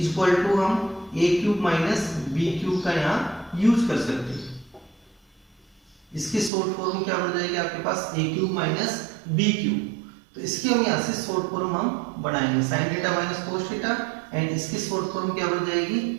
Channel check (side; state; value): left; drops out; at 6.5 s